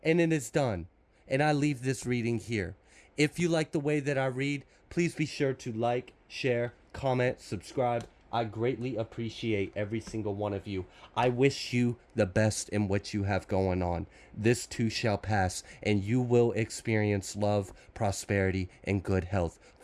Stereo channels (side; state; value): both; identical; correlation 1.00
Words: And it is done. And I leave this reading here. If you like the way that I read, please be sure to like, share, comment, subscribe. I greatly appreciate every single one of you. I wish you the best in what you have going on. This too shall pass, and you will experience love, prosperity, and good health.